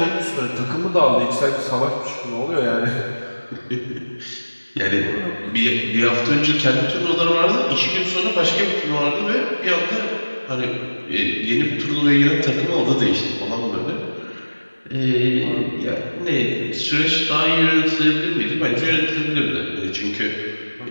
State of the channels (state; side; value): inverted; both; correlation -1.00